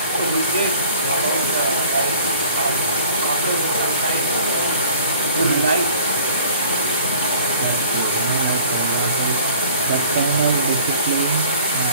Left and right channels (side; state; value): both; inverted; correlation -0.47